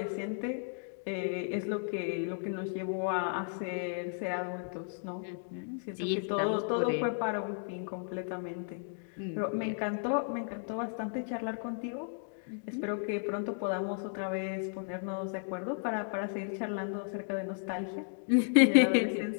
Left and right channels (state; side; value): silent; right; digital silence